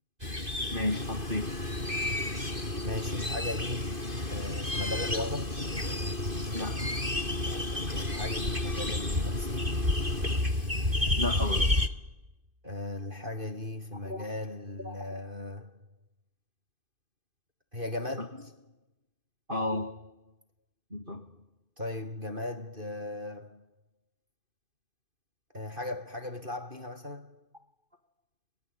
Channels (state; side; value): late; left; 2.5 ms